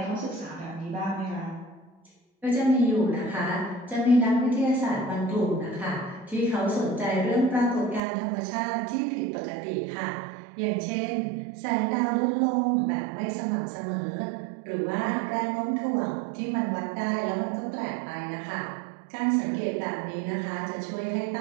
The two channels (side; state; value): left; drops out; at 8.0 s